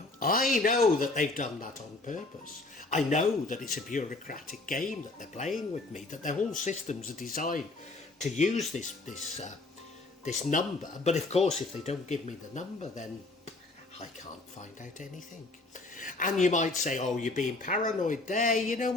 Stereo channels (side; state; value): right; quieter; 3.2 dB